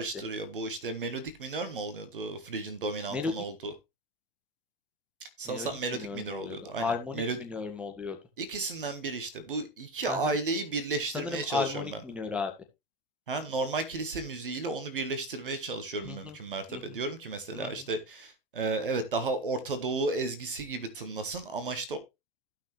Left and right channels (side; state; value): both; normal; correlation 0.22